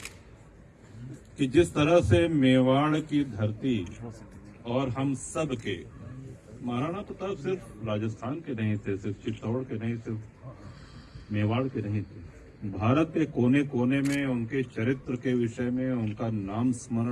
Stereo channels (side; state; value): both; identical; correlation 1.00